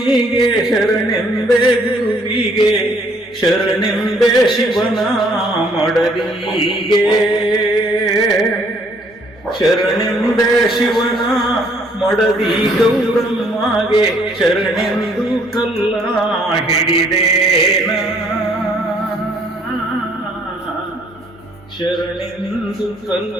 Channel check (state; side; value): normal; both; correlation 0.63